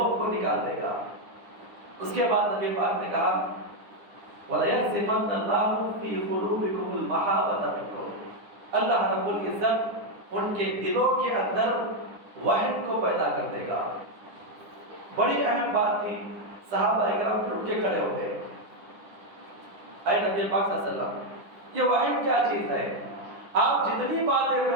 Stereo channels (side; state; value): left; late; 9.9 ms